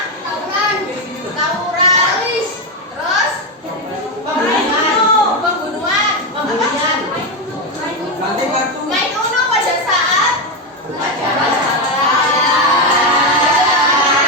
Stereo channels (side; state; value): both; normal; correlation 0.09